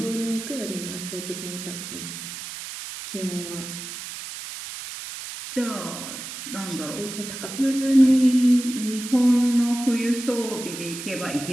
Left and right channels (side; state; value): right; noise; hiss, 9 dB below the sound